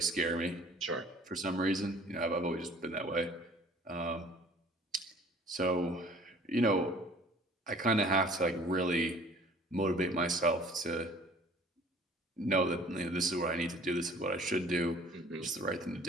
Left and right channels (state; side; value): normal; both; correlation 0.51